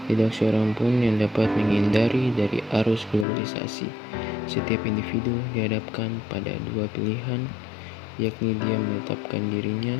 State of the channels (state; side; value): drops out; right; at 3.2 s